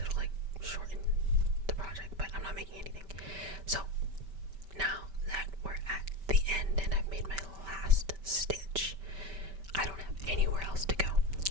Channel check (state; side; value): late; left; 5.1 ms